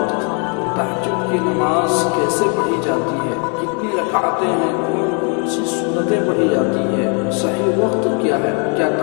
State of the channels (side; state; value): right; quieter; 37.7 dB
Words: تہجد کی نماز کیسے پڑھی جاتی ہے، کتنی رکعتیں ہیں، کون سی سنتیں پڑھی جاتی ہے، صحیح وقت کیا ہے، کیا